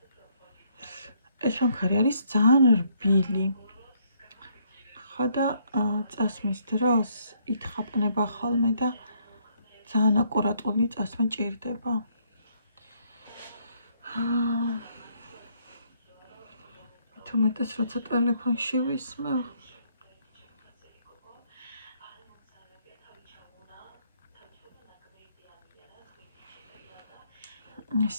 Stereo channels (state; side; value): inverted; both; correlation -0.69